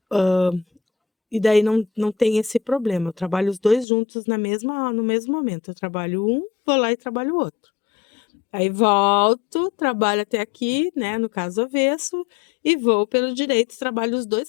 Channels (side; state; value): right; drops out; at 3.9 s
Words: E daí não tem esse problema. Eu trabalho os dois juntos no mesmo momento. Eu trabalho um, vou lá e trabalho o outro. Aí volto, trabalho até aqui, né? No caso avesso, e vou pelo direito, trabalho os dois